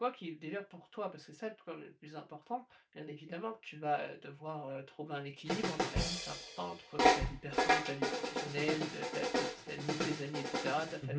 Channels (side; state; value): both; identical; correlation 1.00